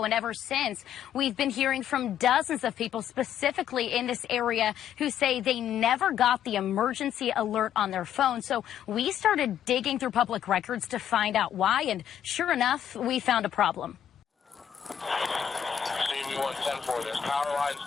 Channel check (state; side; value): quieter; right; 9.7 dB